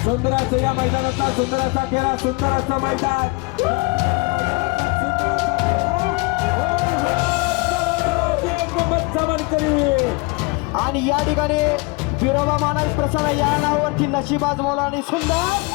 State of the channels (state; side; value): quieter; right; 27.4 dB